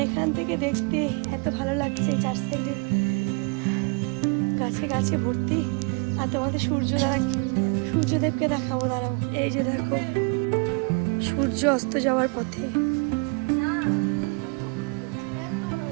এখান থেকে দেখতে এত ভালো লাগছে, চার সাইডে গাছে গাছে ভর্তি। আর তোমাদের সূর্যদেবকে দেখাবো, দাঁড়াও। এই যে দেখো সূর্য অস্ত যাওয়ার পথে।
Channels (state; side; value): quieter; left; 33.2 dB